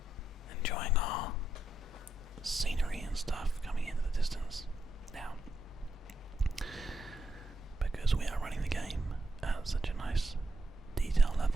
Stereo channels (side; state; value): both; normal; correlation 0.82